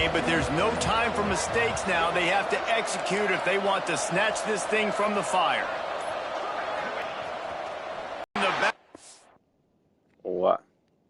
but there's no time for mistakes now. They have to execute if they want to snatch this thing from the fire. What?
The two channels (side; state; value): both; identical; correlation 1.00